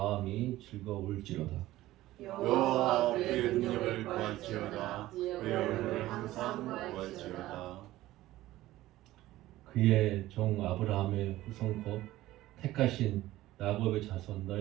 즐거울지로다. 여호와 그의 능력을 구할지어다. 그의 얼굴을 항상 구할지어다. 그의 종 아브라함의 후손 곧 택하신 야곱의 자손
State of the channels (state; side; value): quieter; left; 16.0 dB